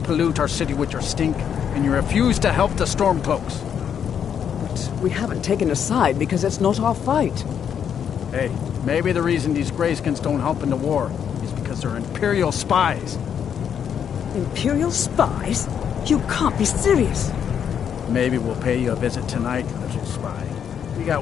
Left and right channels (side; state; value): right; quieter; 8.2 dB